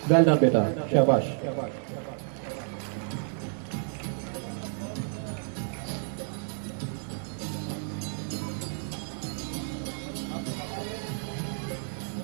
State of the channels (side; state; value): left; silent; 58 dB below the other